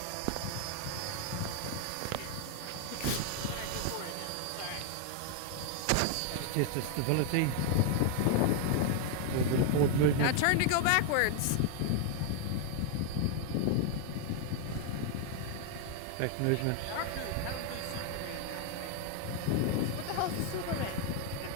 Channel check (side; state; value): both; different; correlation 0.00